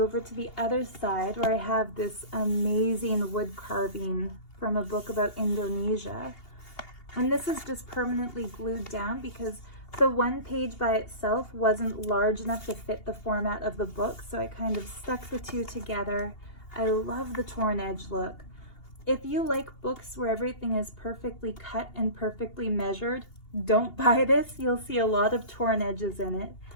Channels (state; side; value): late; right; 2.8 ms